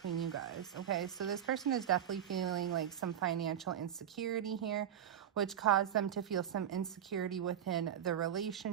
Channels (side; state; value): left; quieter; 9.8 dB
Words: you guys. Okay, so this person is definitely feeling like some financial insecurity here, which caused them to feel some insecurity within the